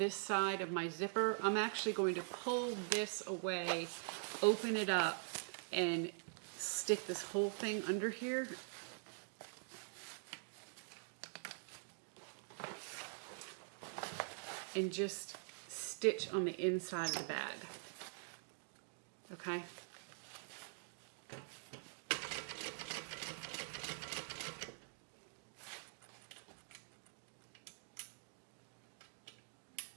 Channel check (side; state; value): left; silent; digital silence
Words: side of my zipper. I'm actually going to pull this away, open it up, and stick this whole thing under here. And just stitch on the inside of the bag. Okay?